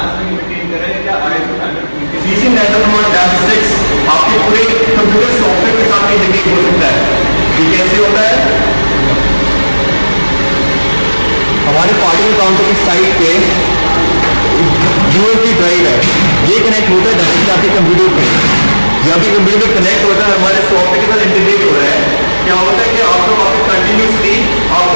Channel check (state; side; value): inverted; both; correlation -1.00